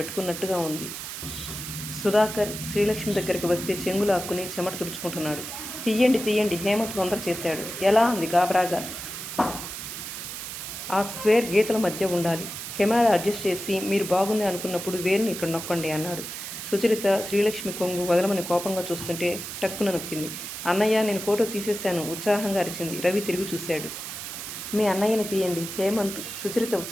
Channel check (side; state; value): right; noise; hiss, 8 dB below the sound